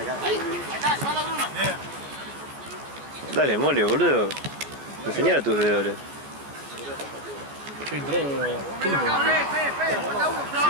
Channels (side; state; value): left; late; 14 ms